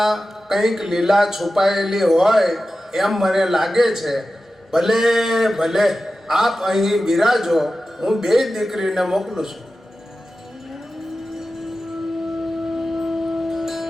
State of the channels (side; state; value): both; normal; correlation 0.94